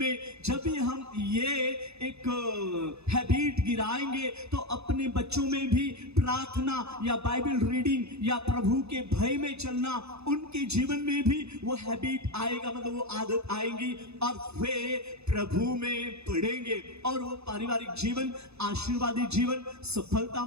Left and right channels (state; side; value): late; left; 0.79 ms